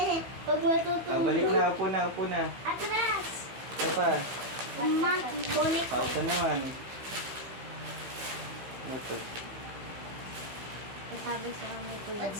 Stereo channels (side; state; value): left; late; 15 ms